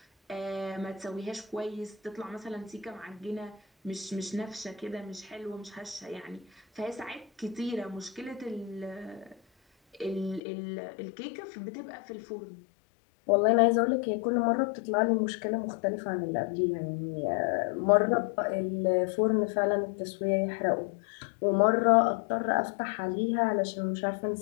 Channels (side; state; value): right; drops out; at 10.4 s